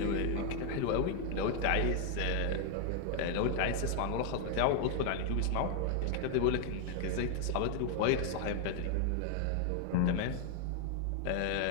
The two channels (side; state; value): both; different; correlation 0.00